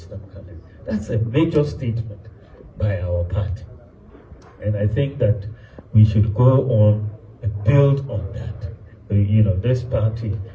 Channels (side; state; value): both; identical; correlation 1.00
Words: candidate. That's a major statement by our party. And I think that we should go on and build on that. This party,